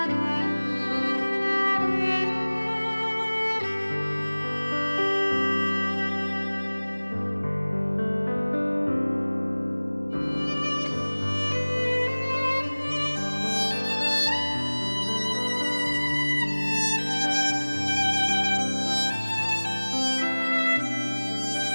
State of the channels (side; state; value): both; inverted; correlation -1.00